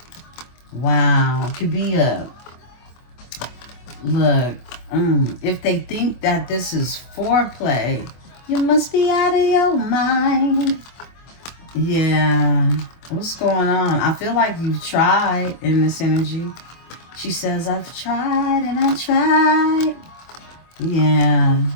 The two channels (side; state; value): right; late; 24 ms